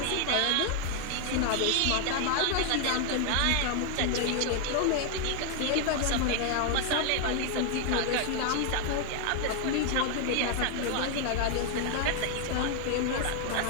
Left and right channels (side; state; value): both; different; correlation 0.00